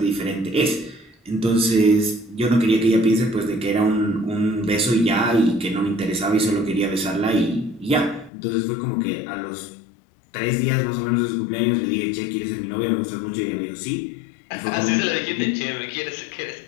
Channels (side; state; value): right; drops out; at 8.3 s